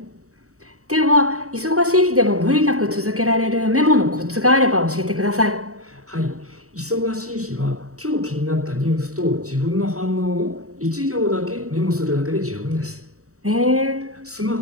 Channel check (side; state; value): left; late; 0.65 ms